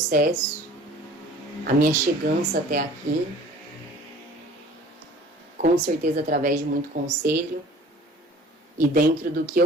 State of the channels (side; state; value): both; normal; correlation 0.48